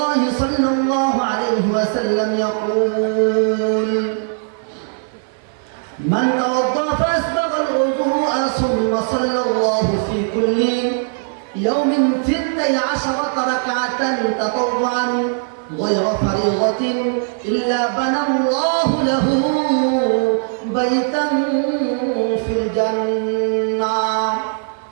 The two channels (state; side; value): silent; left; 58 dB below the other